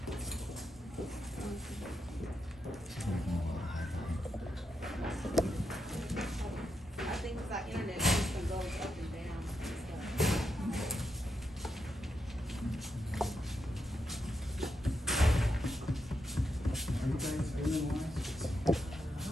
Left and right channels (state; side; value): normal; both; correlation 0.84